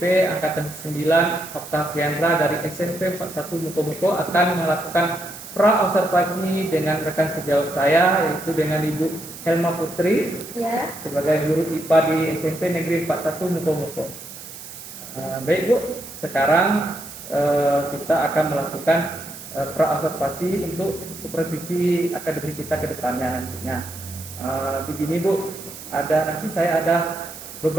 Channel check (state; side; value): noise; right; hiss, 13 dB below the sound